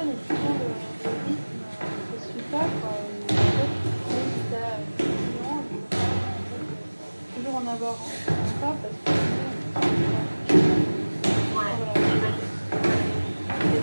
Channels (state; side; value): inverted; both; correlation -1.00